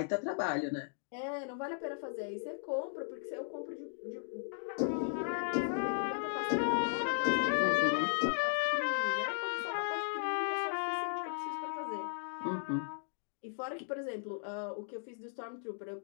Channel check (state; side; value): silent; right; digital silence